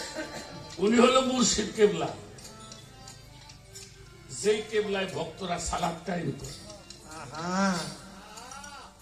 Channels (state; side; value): identical; both; correlation 1.00